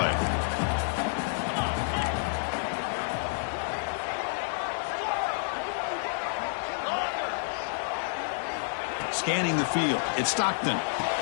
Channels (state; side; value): silent; right; digital silence